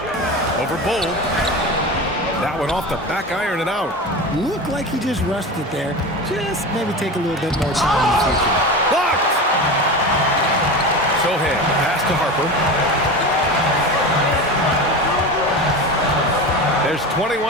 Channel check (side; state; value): both; normal; correlation 0.27